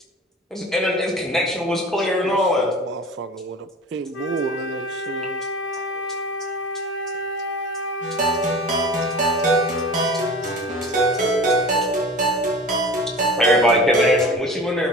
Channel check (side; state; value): both; normal; correlation 0.37